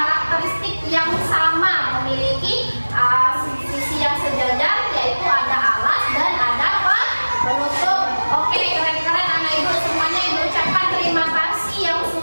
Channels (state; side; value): inverted; both; correlation -1.00